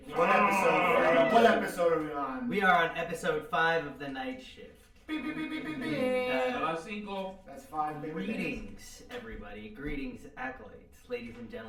What episode are we on? We are on episode 5 of the night shift. Beep, beep, beep, beep, beep, beep. That's 5. Baby. Greetings, everybody. Greetings, acolytes, ladies and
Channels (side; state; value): both; identical; correlation 1.00